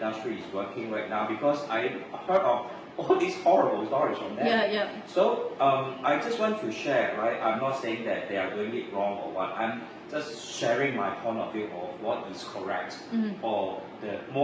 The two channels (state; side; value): identical; both; correlation 1.00